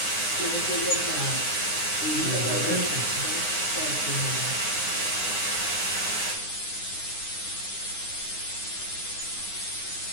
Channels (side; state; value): right; late; 9.7 ms